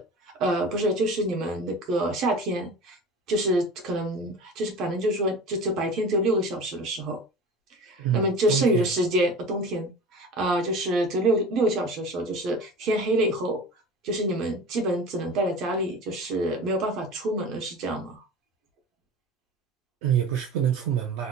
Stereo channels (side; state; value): both; normal; correlation 0.36